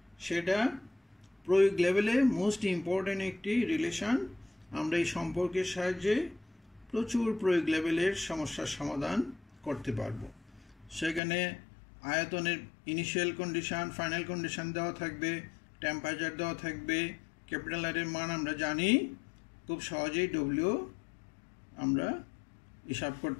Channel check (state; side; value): drops out; right; at 11.2 s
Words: সেটা প্রয়োগ লেভেলে মোস্ট ইম্পর্টেন্ট একটি রিলেশন। আমরা এই সম্পর্কের সাহায্যে প্রচুর প্রয়োগ লেভেলের সমস্যার সমাধান করতে পারবো। সেখানে আয়তনের ইনিশিয়াল কন্ডিশন, ফাইনাল কন্ডিশন দেওয়া থাকবে, টেম্পারেচার দেওয়া থাকবে, ক্যাপিটাল আর এর মান আমরা জানি, খুব সহজেই W আমরা হিসাব